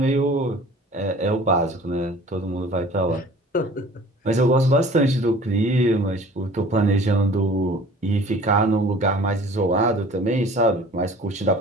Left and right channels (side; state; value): both; normal; correlation 0.47